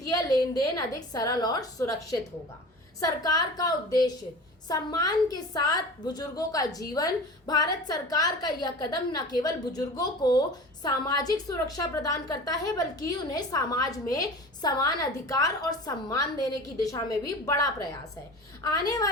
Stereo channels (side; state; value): both; normal; correlation 0.36